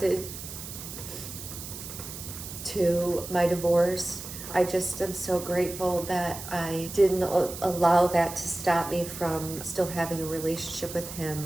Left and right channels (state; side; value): noise; right; hiss, 10 dB below the sound